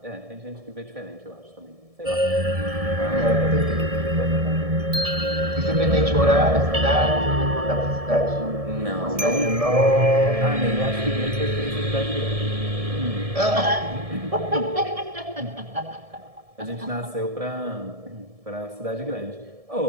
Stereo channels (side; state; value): left; late; 1.7 ms